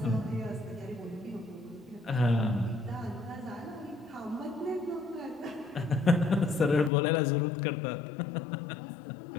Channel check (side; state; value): right; drops out; at 6.9 s